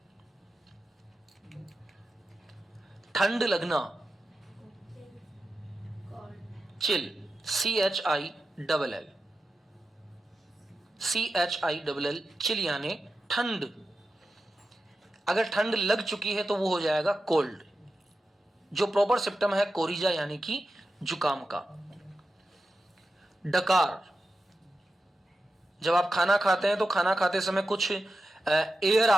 ठंड लगना, चिल, CHILL, CHILL, चिल यानी ठंड। अगर ठंड लग चुकी है तो वो हो जाएगा कोल्ड। जो प्रॉपर सिम्टम है कोरिजा यानी कि जुकाम का। डकार, जब आप खाना खाते हैं तो खाना खाते समय कुछ एयर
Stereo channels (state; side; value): normal; both; correlation 0.91